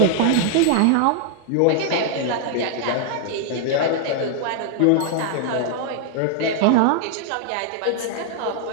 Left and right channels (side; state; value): both; different; correlation -0.01